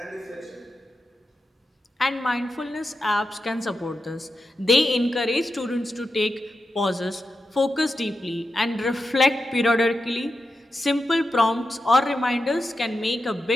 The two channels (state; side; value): normal; both; correlation 0.89